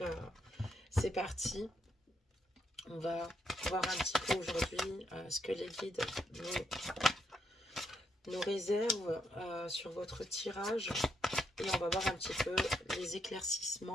c'est parti. On va voir un petit peu aujourd'hui ce que les guides nous réservent sur votre tirage. Et on va voir un petit peu les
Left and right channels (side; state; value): both; normal; correlation 0.77